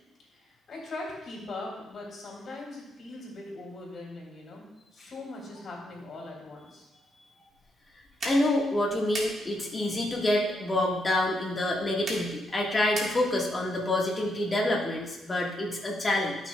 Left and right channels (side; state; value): both; normal; correlation 0.78